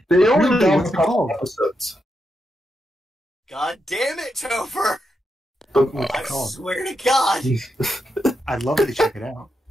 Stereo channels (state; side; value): normal; both; correlation 0.84